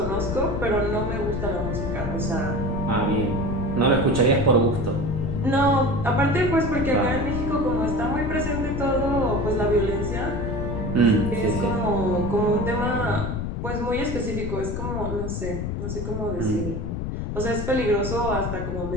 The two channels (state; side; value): noise; left; rumble, 3 dB below the sound